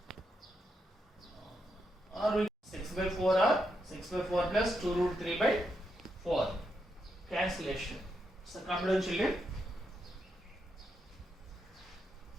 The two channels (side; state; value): both; normal; correlation 0.82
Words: or we 6 by 4 or 6 by 4 plus 2 root 3 by 4. Cancellation. So come down, children.